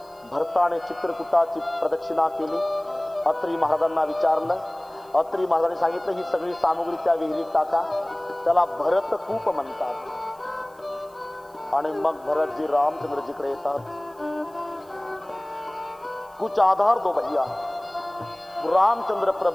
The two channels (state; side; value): noise; right; hiss, 30 dB below the sound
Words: भरता ने चित्रकूटाची प्रदक्षिणा केली। अत्रि महाराजांना विचारलं, अत्रि महाराजांनी सांगितलं ही सगळी सामग्री त्या विहिरीत टाका, त्याला भरत कूप म्हणतात। आणि मग भरतजी रामचंद्रजीकडे येतात। कुछ आधार दो भैया। रामचंद्र